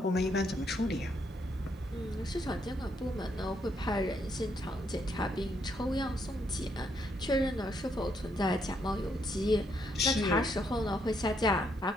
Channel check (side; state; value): both; normal; correlation 0.75